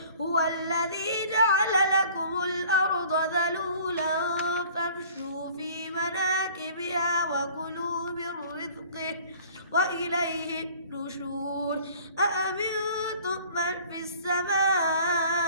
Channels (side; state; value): both; inverted; correlation -0.49